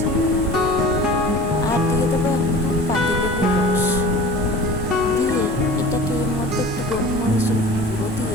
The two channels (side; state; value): both; normal; correlation 0.40